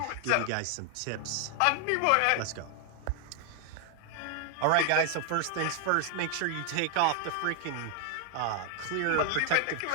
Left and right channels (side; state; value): both; different; correlation 0.00